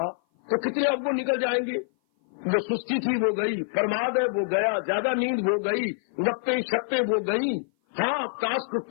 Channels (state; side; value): silent; right; 56 dB below the other